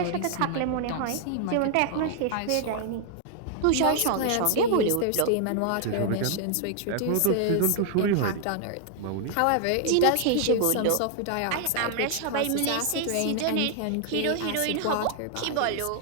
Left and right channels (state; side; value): different; both; correlation 0.00